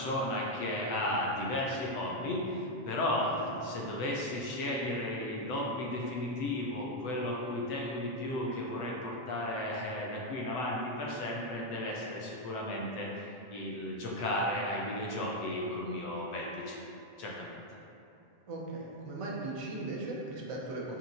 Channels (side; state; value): right; late; 8.0 ms